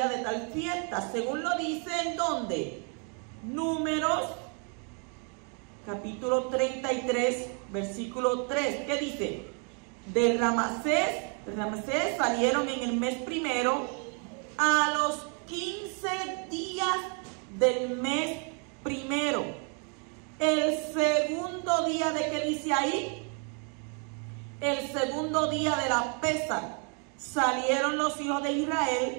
de tal fiesta, según lo dice en ¿dónde? Números capítulo 33, versículo 3, ¿qué dice? De Ramsés salieron en el mes primero, a los 15 días del mes primero. El segundo día, ¿de qué dice ahí? El segundo día de la Pesaj, salieron los hijos de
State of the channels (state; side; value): quieter; left; 38.4 dB